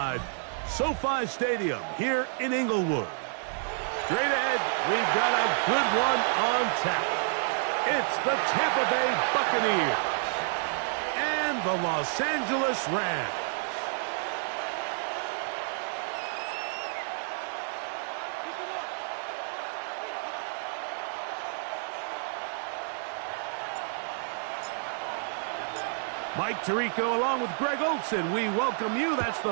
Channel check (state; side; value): silent; left; 58 dB below the other